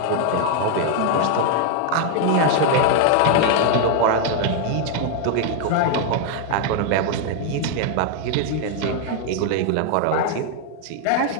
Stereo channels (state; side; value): different; both; correlation 0.00